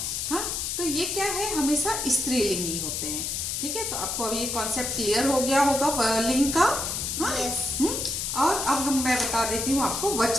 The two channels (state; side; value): noise; left; hiss, 2 dB below the sound